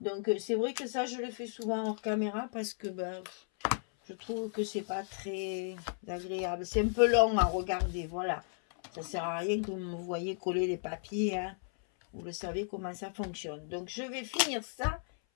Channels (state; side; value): silent; right; 55 dB below the other